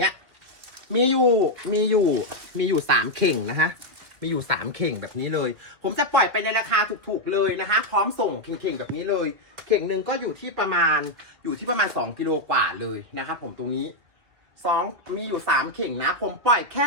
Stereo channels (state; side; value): late; left; 2.1 ms